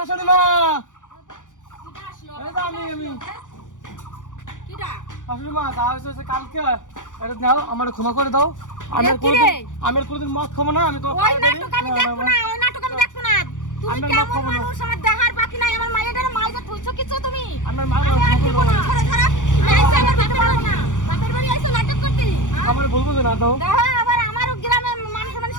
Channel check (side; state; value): right; late; 0.87 ms